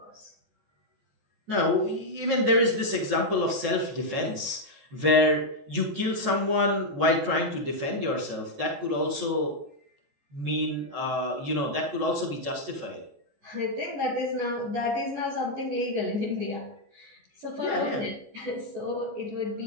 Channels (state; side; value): late; left; 14 ms